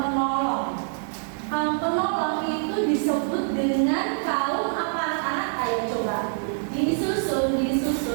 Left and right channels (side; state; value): left; silent; digital silence